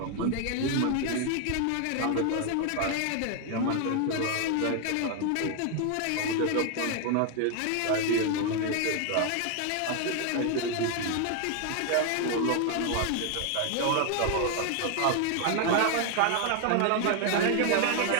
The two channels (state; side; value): different; both; correlation 0.00